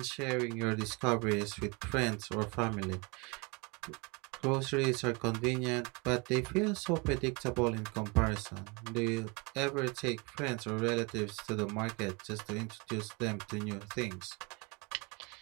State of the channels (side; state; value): left; quieter; 29.2 dB